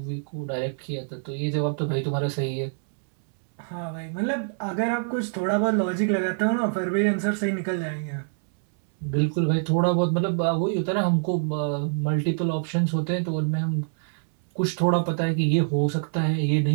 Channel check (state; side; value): silent; left; 61 dB below the other